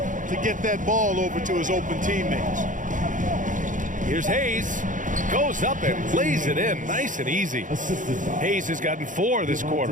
get that ball over to his open teammates. Here's Hayes. Goes up and lays it in. Nice and easy. Hayes has gotten 4 this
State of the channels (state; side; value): late; left; 0.38 ms